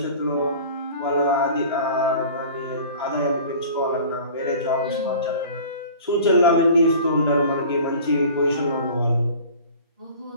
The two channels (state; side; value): inverted; both; correlation -0.43